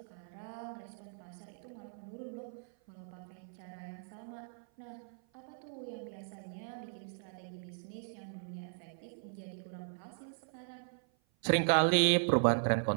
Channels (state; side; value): silent; left; 53 dB below the other